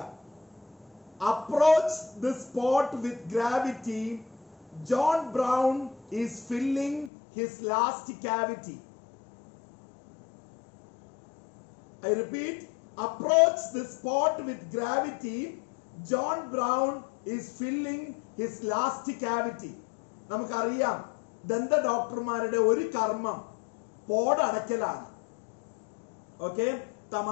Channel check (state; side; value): drops out; right; at 7.1 s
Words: Approach the spot with gravity. John Brown is filling his last cavity. I repeat, approach the spot with gravity. John Brown is filling his last cavity. നമുക്കറിയാം ദന്ത ഡോക്ടർമാരുടെ ഒരു കർമ്മം പോടടക്കലാണ്. ഓക്കെ,